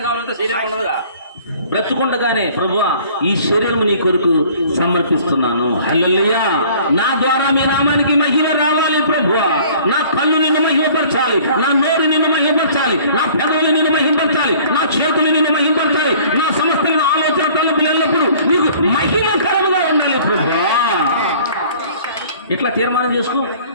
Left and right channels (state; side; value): inverted; both; correlation -0.52